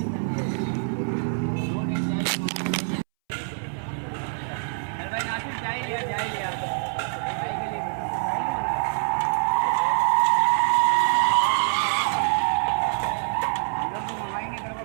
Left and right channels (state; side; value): silent; left; 62 dB below the other